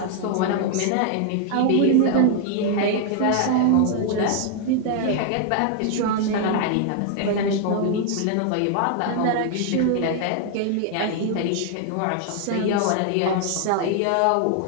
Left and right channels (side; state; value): both; different; correlation 0.00